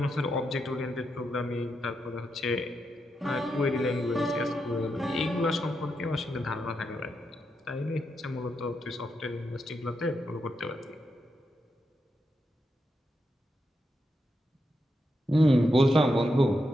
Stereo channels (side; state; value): both; normal; correlation 0.84